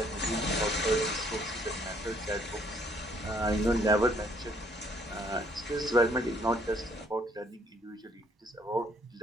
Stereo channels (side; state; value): both; normal; correlation 0.65